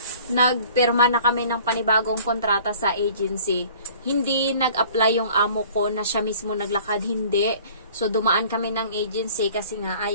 nagpirma na kami ng panibagong kontrata sa agency. Hindi nag-apply yung amo ko na siya mismo naglakad, hindi. So dumaan kami ng agency kasi nga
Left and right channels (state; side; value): inverted; both; correlation -0.50